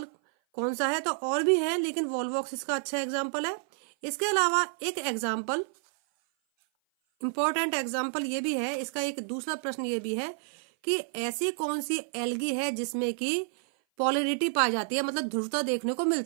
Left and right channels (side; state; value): left; silent; 56 dB below the other